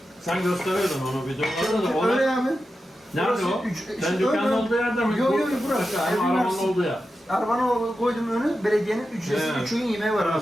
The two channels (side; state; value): both; normal; correlation 0.91